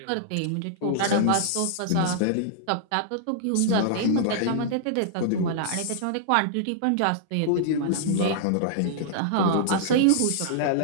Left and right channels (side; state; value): both; different; correlation -0.01